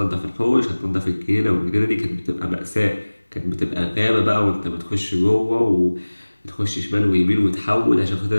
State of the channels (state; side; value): inverted; both; correlation -1.00